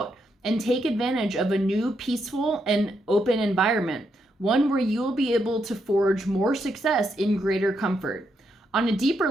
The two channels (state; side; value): normal; both; correlation 0.80